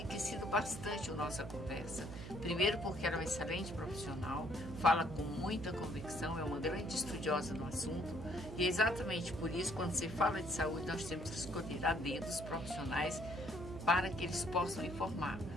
bastante a nossa conversa. Primeiro porque ela é uma excelente profissional, fala com muita convicção, é uma grande estudiosa no assunto. E é exatamente por isso, quando se fala de saúde, nós temos que escolher a dedo os profissionais para que eles possam informar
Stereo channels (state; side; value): noise; right; hum, 10 dB below the sound